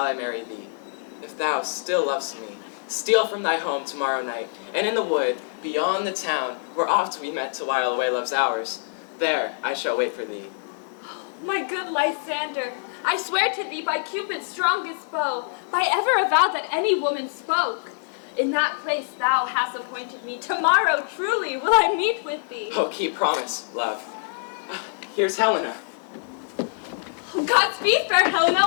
I marry thee. If thou still lovest me, steal from thy home tomorrow night, and in the wood, beyond the town, where oft we met to while away love's hours, there I shall wait for thee. My good Lysander, I swear to thee by Cupid's strongest bow, by ever a vow that any woman spoke. In that place thou hast appointed me, tomorrow truly will I meet with thee. Oh, keep promise, love. Here's Helena. Godspeed, fair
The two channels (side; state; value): right; silent; digital silence